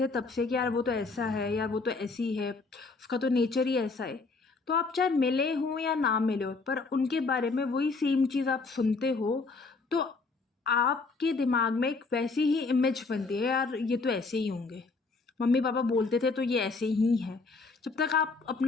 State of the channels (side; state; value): right; quieter; 4.0 dB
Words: तब से कि यार वो तो ऐसा है, यार वो तो ऐसी है, उसका तो नेचर ही ऐसा है, तो आप चाहे मिले हो या ना मिले हो पर उनके बारे में वही सेम चीज़ आप सुनते हो, तो आपके दिमाग में एक वैसी ही इमेज बनती है, यार ये तो ऐसे ही होंगे, मम्मी पापा बोलते थे तो ये ऐसे ही है, जब तक आप